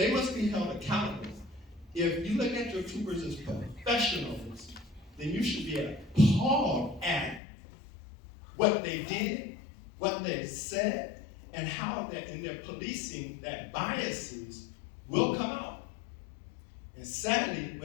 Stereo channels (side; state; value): right; drops out; at 7.4 s